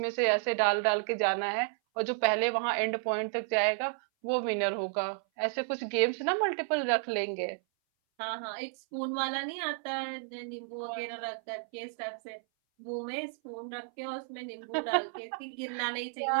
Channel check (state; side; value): silent; left; 56 dB below the other